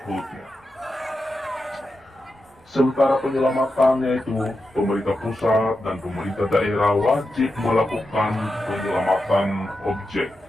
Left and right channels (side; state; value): both; normal; correlation 0.89